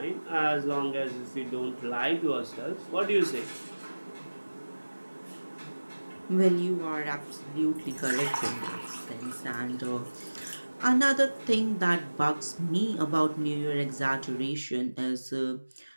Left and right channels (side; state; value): both; inverted; correlation -1.00